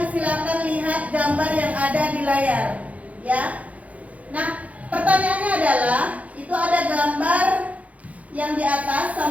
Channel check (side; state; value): left; late; 0.068 ms